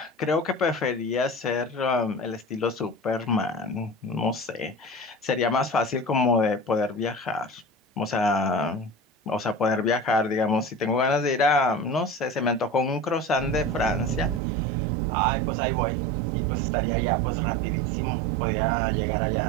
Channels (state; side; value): drops out; left; at 14.4 s